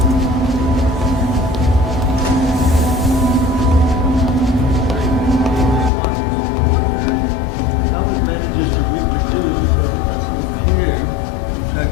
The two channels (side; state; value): right; drops out; at 5.9 s